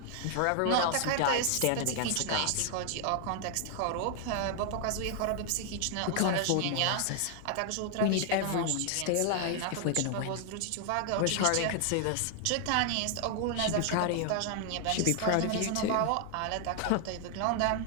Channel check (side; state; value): both; different; correlation 0.00